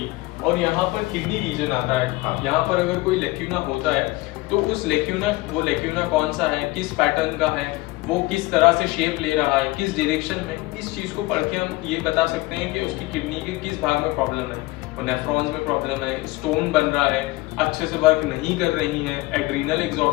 और यहाँ पर किडनी रीजन आता है। हाँ। यहाँ पर अगर कोई लेक्यूना होता है तो उस लेक्यूना कौन सा है, किस पैटर्न का है, वो किस तरह से शेप ले रहा है, किस डायरेक्शन में, इस चीज़ को पढ़ के हम ये बता सकते हैं कि उसकी किडनी के किस भाग में प्रॉब्लम है। और नेफ्रॉन्स में प्रॉब्लम है, स्टोन बन रहा है, अच्छे से वर्क नहीं कर रही है, एड्रीनल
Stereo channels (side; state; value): right; quieter; 20.7 dB